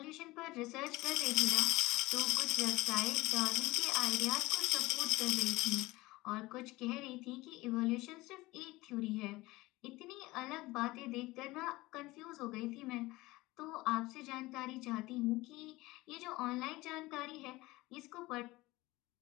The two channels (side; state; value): right; quieter; 20.1 dB